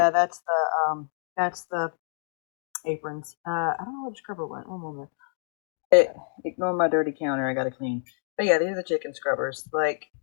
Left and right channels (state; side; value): silent; right; digital silence